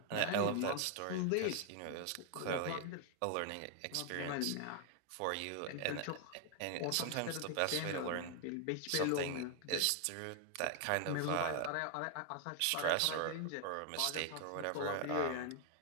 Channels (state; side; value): different; both; correlation 0.00